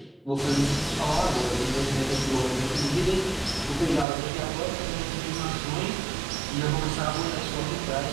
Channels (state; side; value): drops out; left; at 4.0 s